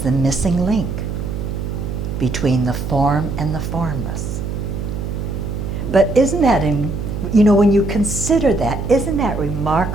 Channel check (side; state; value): right; noise; hum, 4 dB below the sound